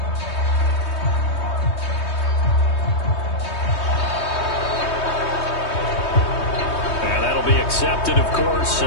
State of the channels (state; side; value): late; right; 3.2 ms